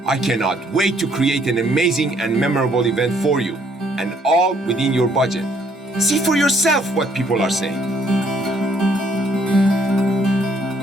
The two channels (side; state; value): both; normal; correlation 0.66